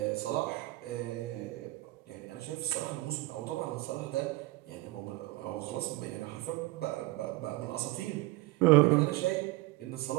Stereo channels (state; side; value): quieter; left; 20.1 dB